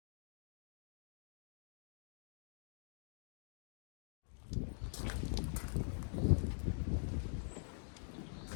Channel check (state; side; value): silent; right; digital silence